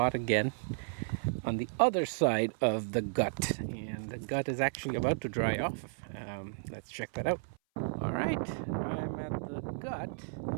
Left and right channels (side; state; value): left; silent; 55 dB below the other